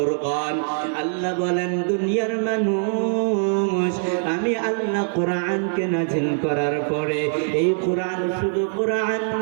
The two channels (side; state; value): left; silent; 64 dB below the other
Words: আল্লাহ বলেন, দুনিয়ার মানুষ, আমি আল্লাহ কোরআনকে নাজিল করার পরে এই কোরআন শুধু কোরআন